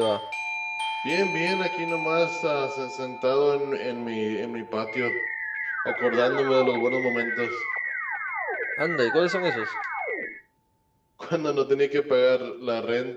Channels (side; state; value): both; identical; correlation 1.00